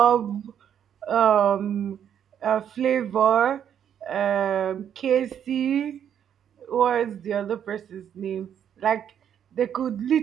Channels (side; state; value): left; quieter; 9.1 dB